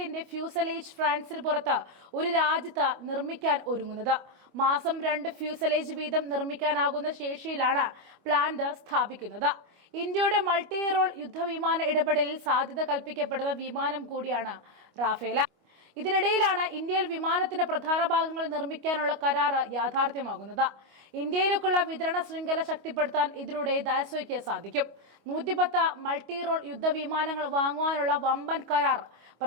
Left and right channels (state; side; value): late; left; 25 ms